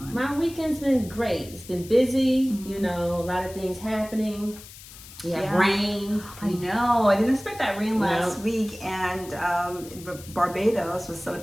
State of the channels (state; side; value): noise; left; hiss, 17 dB below the sound